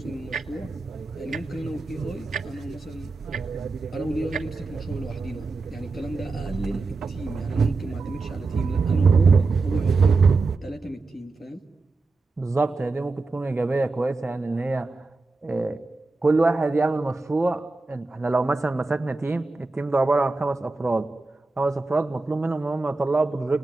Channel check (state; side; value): quieter; left; 3.7 dB